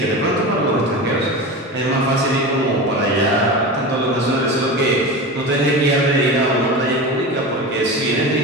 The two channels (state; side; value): normal; both; correlation 0.27